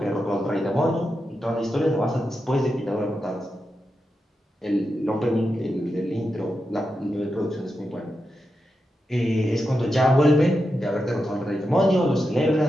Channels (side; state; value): both; normal; correlation 0.88